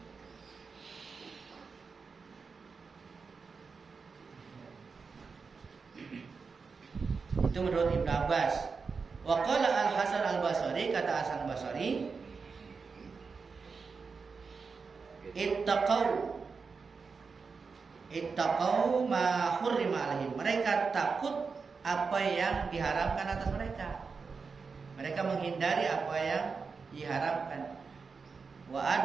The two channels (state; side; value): quieter; left; 5.0 dB